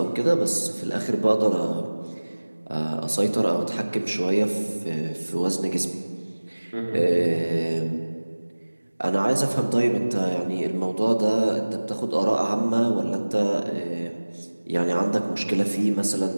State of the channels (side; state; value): both; inverted; correlation -1.00